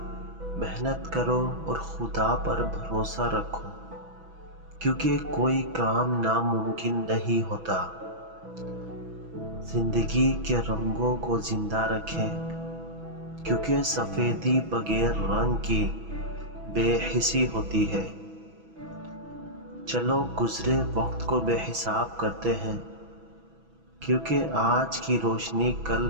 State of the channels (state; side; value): late; left; 6.1 ms